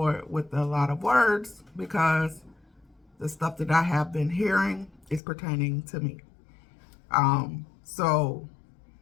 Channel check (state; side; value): drops out; right; at 5.2 s